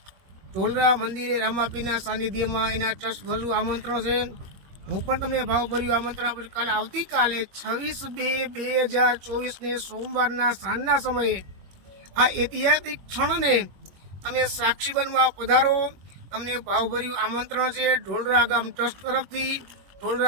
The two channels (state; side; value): late; left; 21 ms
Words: ઢોલરા મંદિરે રામાપીરના સાનિધ્યમાં એના ટ્રસ્ટ ભરું આમંત્રણ છે. હું પણ તમને ભાવભર્યું આમંત્રણ આપું છું. કાલે આવતીકાલે 26/2/2024 સોમવારના સાંજના સમયે આ ઐતિહાસિક ક્ષણને તમે સાક્ષી બનવા પધારો. તમને ભાવભર્યું આમંત્રણ છે. ઢોલરા ગામ ટ્રસ્ટ તરફથી,